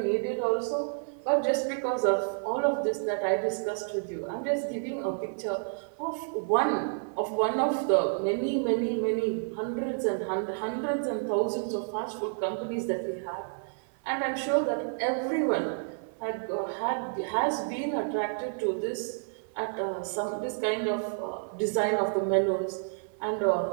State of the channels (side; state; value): left; silent; 58 dB below the other